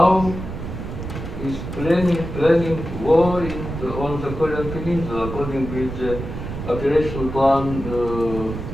is planning war on the Korean Peninsula according with the operational plan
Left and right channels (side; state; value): right; noise; rumble, 8 dB below the sound